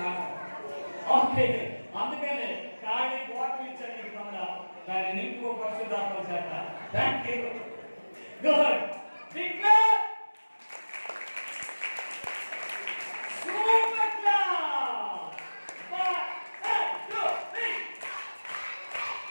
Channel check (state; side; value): inverted; both; correlation -1.00